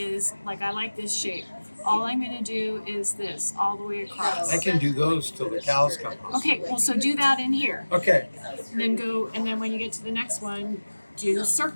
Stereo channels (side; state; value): both; inverted; correlation -1.00